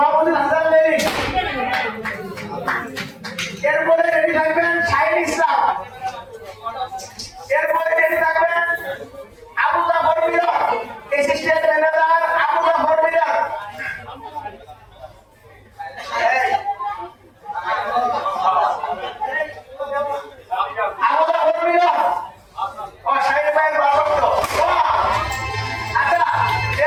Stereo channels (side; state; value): both; identical; correlation 1.00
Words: হাসান লেলি, এরপরে রেডি থাকবেন শাহিন ইসলাম, এরপরে রেডি থাকবেন আবু জাফর মিলন, অ্যাসিস্ট্যান্ট ম্যানেজার আবু জাফর মিলন।